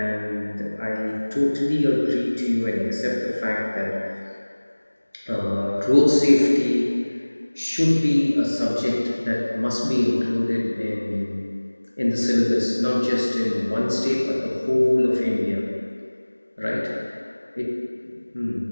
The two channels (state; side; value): inverted; both; correlation -1.00